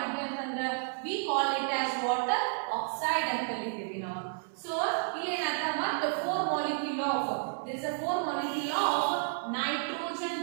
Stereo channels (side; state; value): left; silent; 56 dB below the other